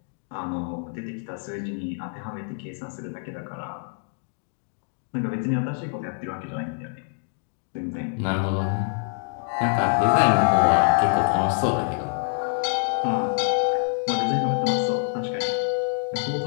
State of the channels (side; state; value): right; silent; 61 dB below the other